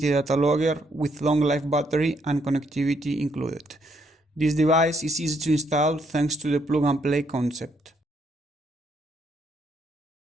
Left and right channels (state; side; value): normal; both; correlation 0.73